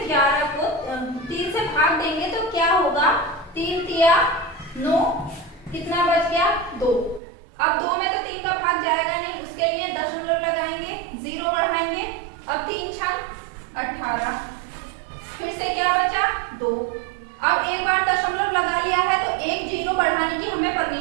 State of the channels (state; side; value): drops out; left; at 7.2 s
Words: 11 को 3 से भाग देंगे तो क्या होगा, 3 तिया 9, कितना बच गया 2। अब 2 में तो 3 का भाग जाएगा नहीं, उसके लिए दशमलव लगाएंगे, 0 बढ़ाएंगे। अब 3 छंग 18, फिर से क्या बचा 2। अब एक बार दशमलव लगा लिया है तो एक 0 बढ़ाने की हमें